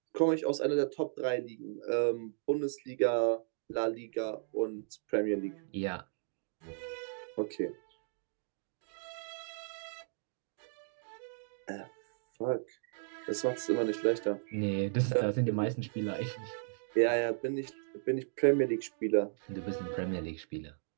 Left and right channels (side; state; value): left; silent; digital silence